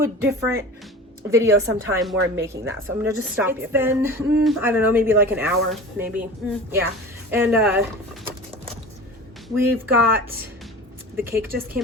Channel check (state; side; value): normal; both; correlation 0.36